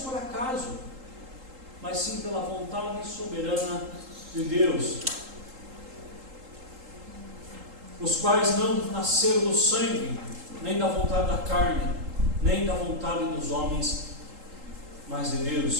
acaso, mas sim pela vontade soberana de Deus, os quais não nasceram do sangue, nem da vontade da carne, nem da vontade dos homens, mas de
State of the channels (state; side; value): late; left; 3.8 ms